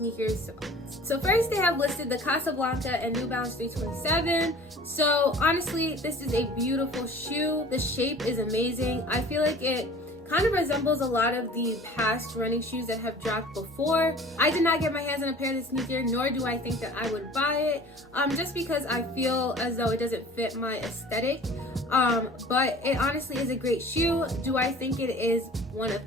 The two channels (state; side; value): normal; both; correlation 0.45